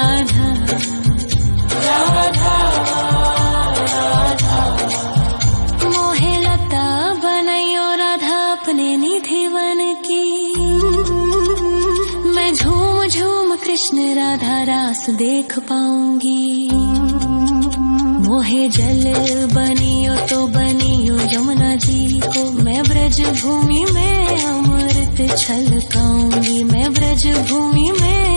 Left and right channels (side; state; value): both; inverted; correlation -1.00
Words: राधा। मोहे लता बनयो राधा अपने निधि वन की। मैं झूम झूम कृष्ण राधा रास देख पाऊंगी। मोहे जल बनियो तो बनियो यमुना जी को। मैं ब्रज भूमि में अमृत छलकाऊंगी। मैं ब्रज भूमि